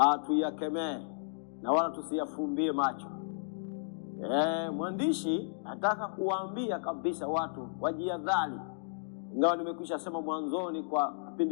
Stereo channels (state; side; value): silent; right; digital silence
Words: tuyakemee na wala tusiyafumbie macho. Mwandishi nataka kuwaambia kabisa watu wajihadhari. Ingawa nimekwisha sema mwanzoni, kwa